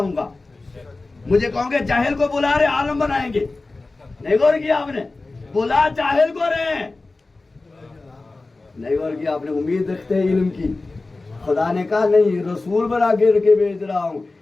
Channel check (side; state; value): right; quieter; 3.4 dB